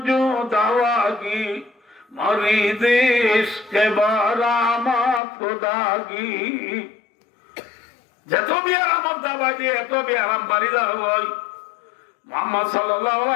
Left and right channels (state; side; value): drops out; right; at 5.2 s